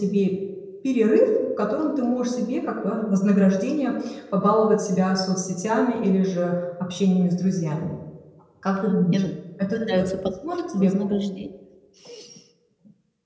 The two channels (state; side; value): identical; both; correlation 1.00